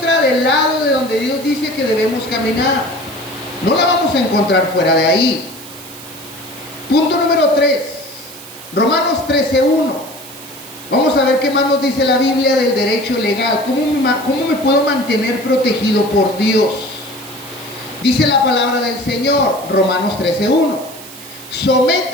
del lado de donde Dios dice que debemos caminar. No la vamos a encontrar fuera de ahí. Punto número 3. Romanos 13:1. Vamos a ver qué más nos dice la Biblia del derecho legal. ¿Cómo me puedo mantener protegido por Dios? Dice la palabra del Señor, Romanos 13:1.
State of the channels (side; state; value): right; noise; hiss, 16 dB below the sound